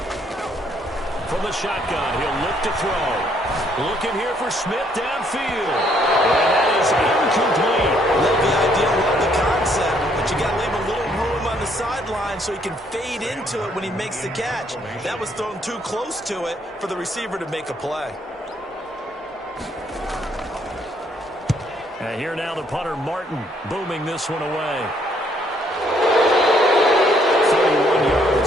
From the shotgun, he'll look to throw. Looking here for Smith downfield. And that is incomplete. Love the idea, love the concept, but you got to leave a little room on the sideline so he can fade into it when he makes the catch. That was thrown too close to it for the receiver to make a play. And here now the punter, Martin, booming this one away. 31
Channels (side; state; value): both; normal; correlation 0.68